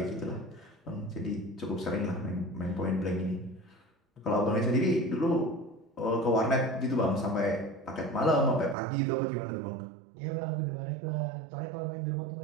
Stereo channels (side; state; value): left; drops out; at 8.8 s